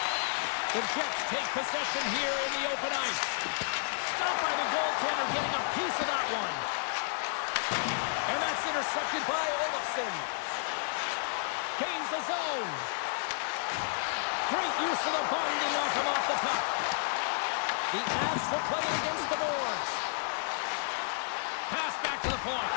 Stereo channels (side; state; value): right; silent; digital silence